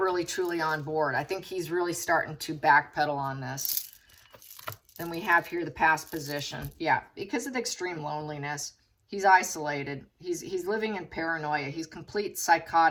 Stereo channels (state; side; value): identical; both; correlation 1.00